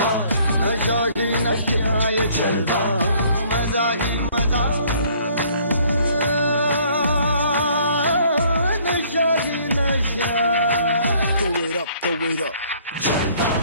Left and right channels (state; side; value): inverted; both; correlation -0.59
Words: नशा ही नशा ये जलवा, मजा ही मजा, नशा ही नशा. Throw it up, throw it up.